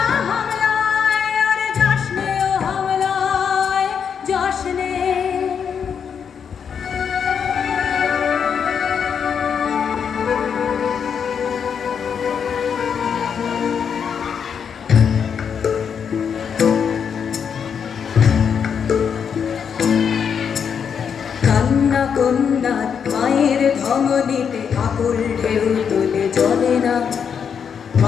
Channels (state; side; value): quieter; right; 7.1 dB